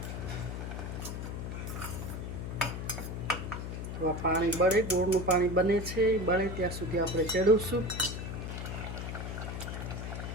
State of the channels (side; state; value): left; noise; hum, 5 dB below the sound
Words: તો આ પાણી બળે, ગોળનું પાણી બને છે, બળે ત્યાં સુધી આપણે ચડવશું.